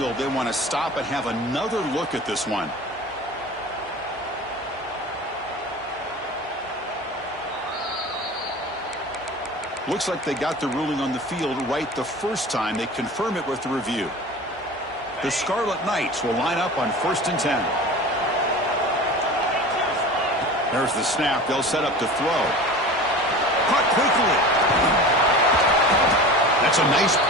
they want to stop and have another look at this one. Looks like they got the ruling on the field right the first time. They confirm it with the review. The Scarlet Knights will line up on 1st and 10. There's the snap. They'll set up to throw. Caught quickly. That's a nice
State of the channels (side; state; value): both; normal; correlation 0.36